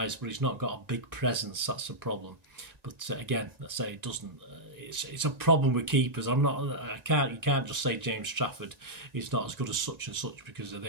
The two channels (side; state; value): left; late; 1.9 ms